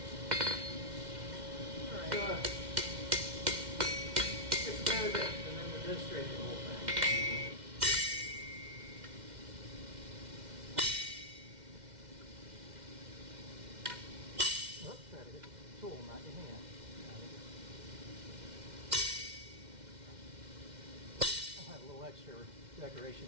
it's about it, and then we're demonstrating the whole thing. Oops, try to hit the tool, not your hand. I'll have a little extra decoration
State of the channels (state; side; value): late; left; 2.1 ms